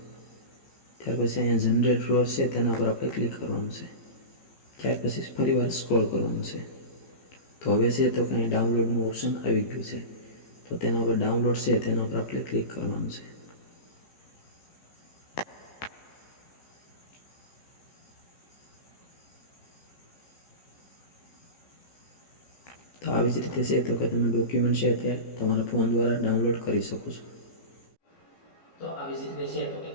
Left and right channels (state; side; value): late; right; 14 ms